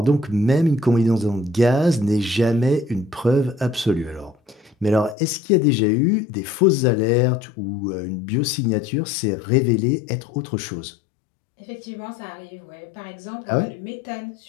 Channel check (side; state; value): right; drops out; at 5.2 s